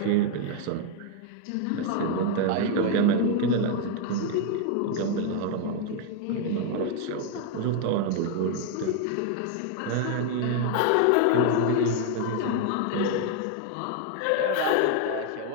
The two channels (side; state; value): both; different; correlation 0.00